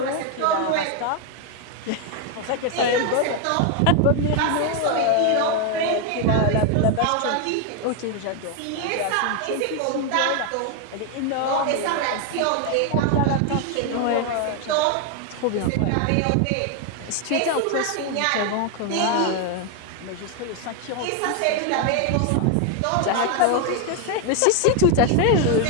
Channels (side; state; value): both; different; correlation 0.01